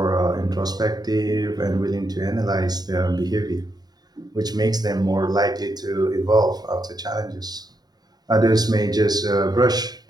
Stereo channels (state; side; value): late; left; 0.19 ms